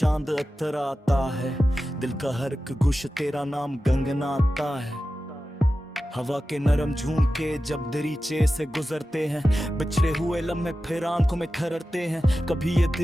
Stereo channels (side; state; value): both; normal; correlation 0.93